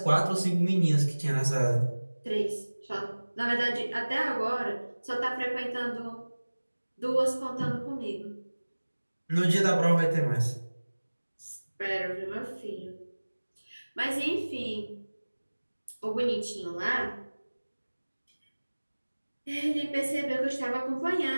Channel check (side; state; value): both; inverted; correlation -1.00